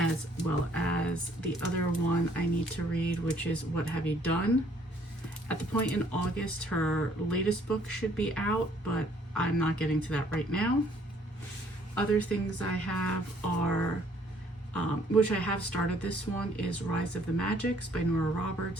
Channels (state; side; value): normal; both; correlation 0.63